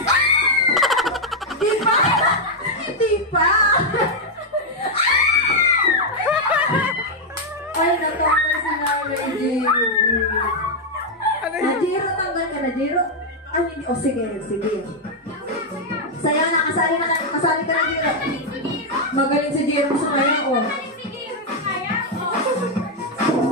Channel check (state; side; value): normal; both; correlation -0.01